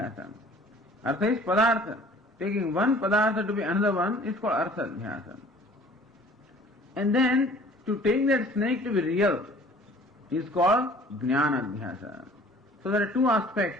Artha is padartha. Taking one padartha to be another one is called artha adhyasa. And then to take that snake to be real is called jnana adhyasa. So there are two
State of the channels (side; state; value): both; normal; correlation 0.51